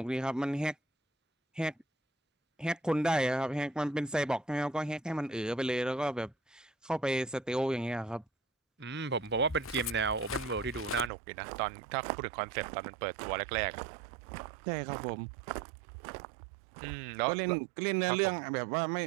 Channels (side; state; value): left; drops out; at 11.1 s